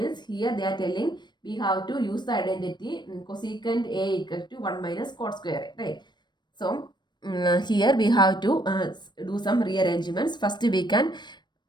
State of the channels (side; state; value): right; late; 0.22 ms